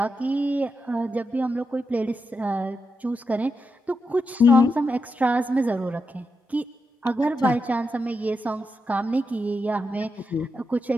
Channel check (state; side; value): normal; both; correlation 0.86